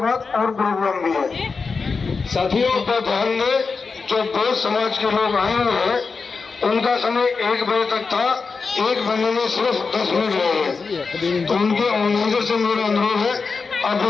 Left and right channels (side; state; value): right; quieter; 4.7 dB